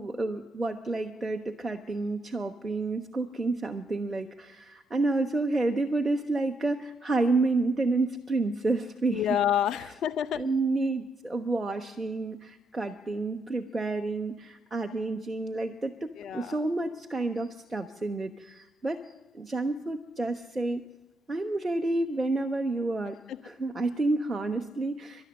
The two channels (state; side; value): normal; both; correlation 0.79